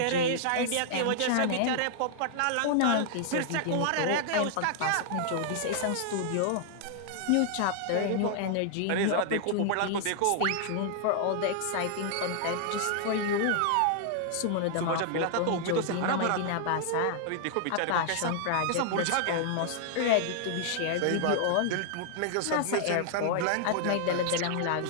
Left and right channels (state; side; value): different; both; correlation 0.00